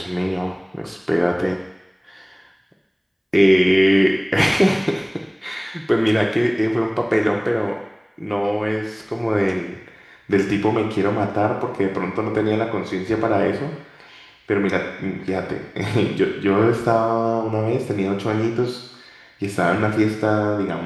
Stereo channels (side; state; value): both; identical; correlation 1.00